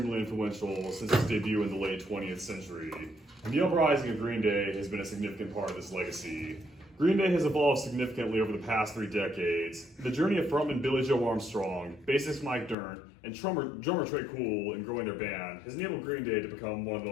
influential since its debut in the late 20th century, and the uprising of Green Day has been a significant part of this legacy. Green Day has evolved significantly over the past 3 decades. The journey of frontman Billy Joe Armstrong, bassist Mike Dirnt, and drummer Trey Cool in growing their band has enabled Green Day to become one of the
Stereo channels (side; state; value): right; drops out; at 12.8 s